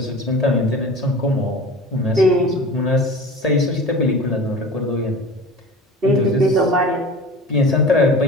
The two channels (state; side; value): normal; both; correlation 0.37